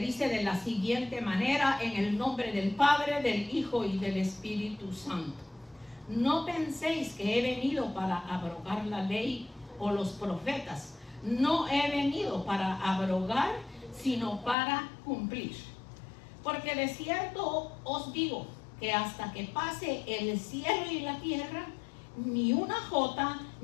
de la siguiente manera: en el nombre del Padre, del Hijo y del Espíritu Santo. No penséis que he venido para abrogar la ley o los profetas. No he venido para abrogar, sino para cumplir. Porque de cierto os digo que hasta que pase el cielo y la tierra, ni una jota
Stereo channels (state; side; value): drops out; right; at 14.6 s